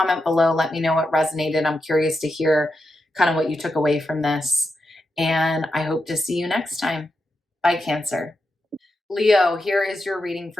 below. Let me know what resonated. I'm curious to hear kind of what you took away from this. And I hope to see you next time. Bye, Cancer. Leo, here is your reading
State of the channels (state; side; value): normal; both; correlation 0.87